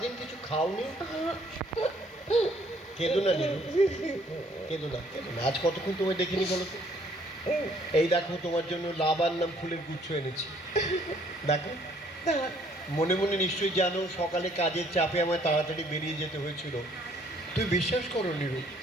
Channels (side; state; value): both; normal; correlation 0.63